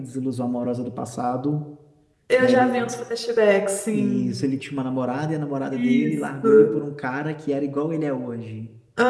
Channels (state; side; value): identical; both; correlation 1.00